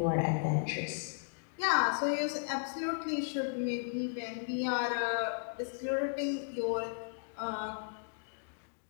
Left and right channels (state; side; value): silent; right; digital silence